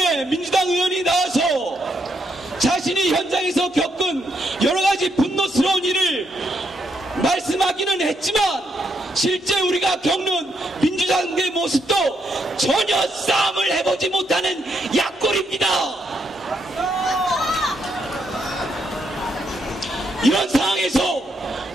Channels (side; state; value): both; normal; correlation 0.78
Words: 오랜만에 민주당 의원이 나와서 자신이 현장에서 겪은 여러 가지 분노스러운 일을 말씀하기는 했지만 실제 우리가 겪는 민주당의 모습도 전혀 싸움을 해보지 못하는 약골입니다. 이런 상황에서